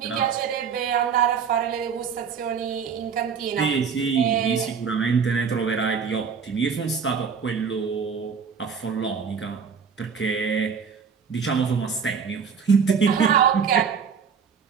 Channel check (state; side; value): quieter; left; 6.3 dB